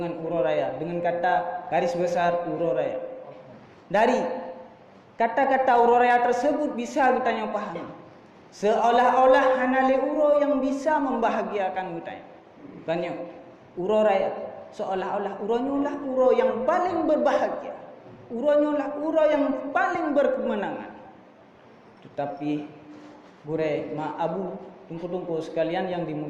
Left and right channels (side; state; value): both; identical; correlation 1.00